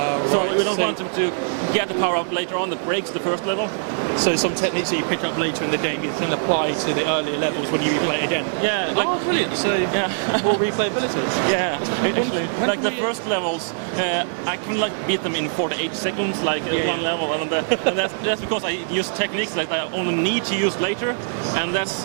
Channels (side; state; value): left; silent; digital silence